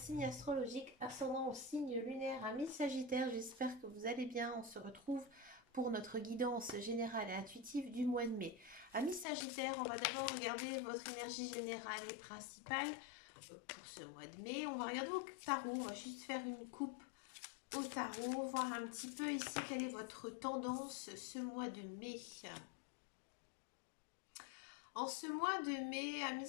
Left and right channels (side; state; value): right; drops out; at 9.2 s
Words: astrologique, ascendant au signe lunaire, amis Sagittaires, j'espère que vous allez bien. On se retrouve pour notre guidance générale et intuitive du mois de mai. Amis Sagittaires, on va d'abord regarder votre énergie générale et principale pour ce mois de mai. On va regarder au tarot, on va juste faire une coupe au tarot, voir un petit peu ici quelle est votre tendance ce mois de mai. En ce mois de mai, amis